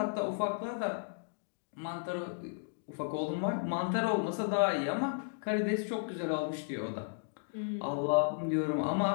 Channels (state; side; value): silent; right; digital silence